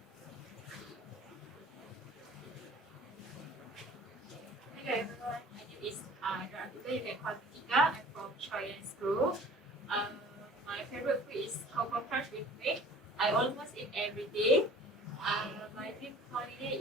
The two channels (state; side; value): normal; both; correlation 0.47